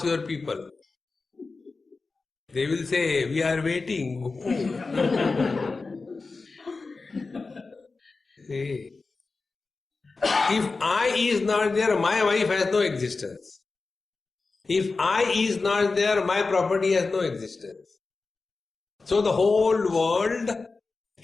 your people. They will say, we are waiting. See, if I is not there, my wife has no existence. If I is not there, my property has no existence. So the whole world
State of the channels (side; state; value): right; quieter; 4.0 dB